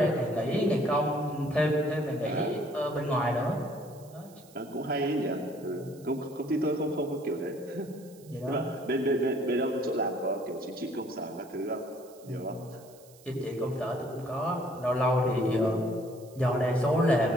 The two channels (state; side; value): noise; right; hiss, 25 dB below the sound